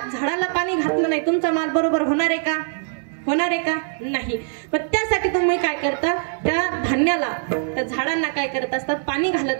झाडाला पाणी घातलं नाही, तुमचा माल बरोबर होणार आहे का? होणार आहे का? नाही. पण त्यासाठी तुम्ही काय करता, त्या धान्याला, त्या झाडांना काय करत असतात? पाणी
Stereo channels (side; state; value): left; silent; 64 dB below the other